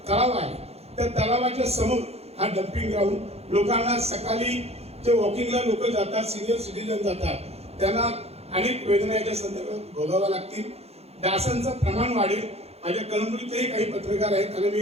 तलाव आहे, त्या तलावाच्या समोर हा डम्पिंग ग्राउंड, लोकांना सकाळी जे वॉकिंगला लोक जातात, सिनियर सिटीजन जातात, त्यांना अनेक वेदनाच्या संदर्भात भोगाव्या लागतील। डासांचं प्रमाण वाढेल। माझ्या कळमनुरीतही काही पत्रकार आहेत, आणि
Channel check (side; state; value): left; late; 0.30 ms